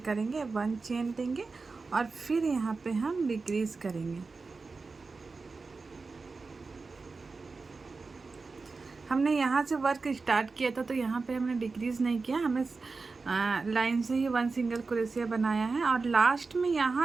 1 चेन लेंगे और फिर यहाँ पे हम डिक्रीज करेंगे। हमने यहाँ से वर्क स्टार्ट किया था, तो यहाँ पे हमने डिक्रीज नहीं किया, हमें लाइन से ही 1 सिंगल क्रोशिया बनाया है। और लास्ट में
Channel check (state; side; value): quieter; left; 4.2 dB